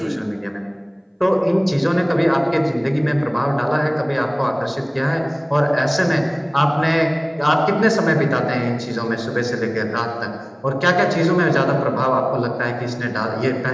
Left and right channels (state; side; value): identical; both; correlation 1.00